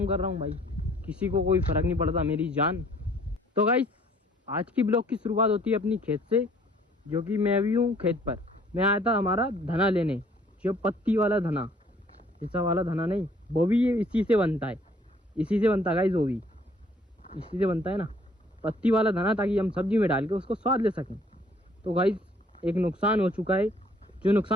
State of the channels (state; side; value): normal; both; correlation 0.60